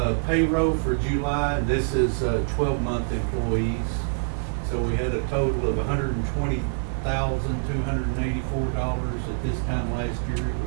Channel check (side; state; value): left; silent; 61 dB below the other